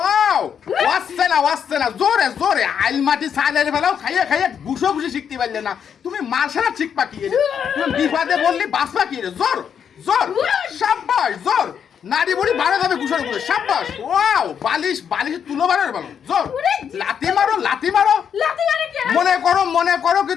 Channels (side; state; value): right; quieter; 7.8 dB